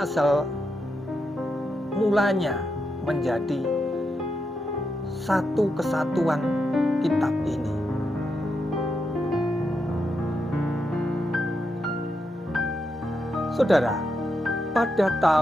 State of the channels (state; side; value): normal; both; correlation 0.84